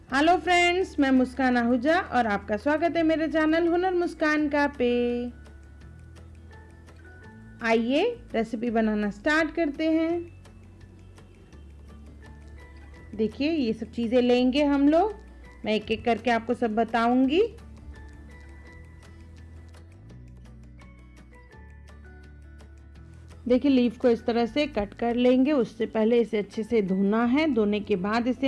हेलो फ्रेंड्स, मैं मुस्कान आहूजा और आपका स्वागत है मेरे चैनल हुनर मुस्कान का पे। आइए रेसिपी बनाना स्टार्ट करते हैं। देखिए ये सब चीज़ें लेंगे हम लोग, मैं एक एक करके आपको सब बताऊंगी। देखिए लीफ को इस तरह से कट कर लेंगे। उससे पहले इसे अच्छे से धोना है, धोने के बाद इसे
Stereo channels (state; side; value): identical; both; correlation 1.00